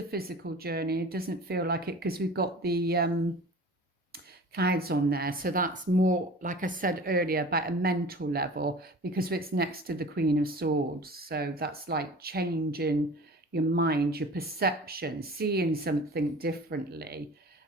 physical journey. It doesn't feel like it because we've got the clouds on there. So that's more, like I said earlier, about a mental level because it's next to the Queen of Swords. So that's like changing your mind, your perception, seeing something differently.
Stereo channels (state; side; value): normal; both; correlation 0.40